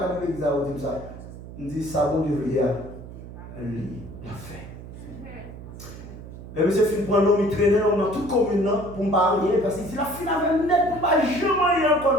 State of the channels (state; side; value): noise; right; hum, 14 dB below the sound